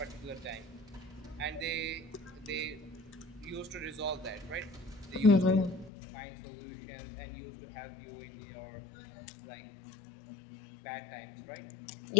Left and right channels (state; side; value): drops out; right; at 5.9 s